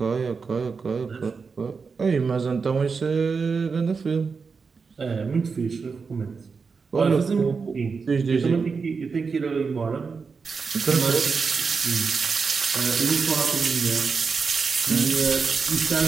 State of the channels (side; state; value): left; quieter; 5.1 dB